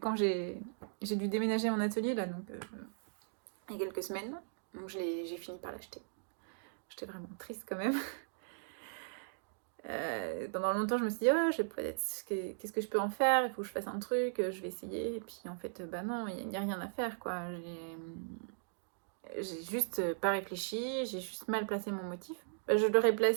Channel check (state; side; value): silent; left; digital silence